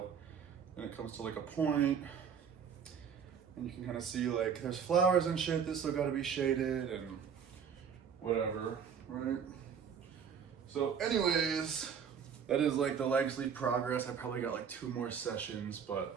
And it comes to like a point. And you can kind of see like there's flowers and shit that still gotta be shaded and whatever, right? So anyways, that is like the leg sleeve progress. I probably got like 2 more sessions, but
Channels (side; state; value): left; quieter; 7.2 dB